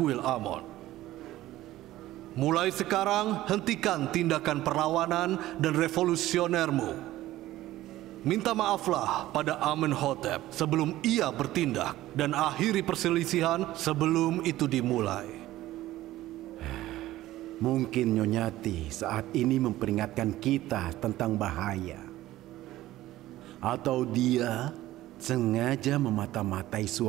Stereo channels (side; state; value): left; quieter; 15.5 dB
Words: Amon. Mulai sekarang, hentikan tindakan perlawanan dan revolusionermu. Minta maaflah pada Amenhotep sebelum ia bertindak dan akhiri perselisihan sebelum itu dimulai. Mungkin Nyonyati saat ini memperingatkan kita tentang bahaya. Atau dia sengaja memata-matai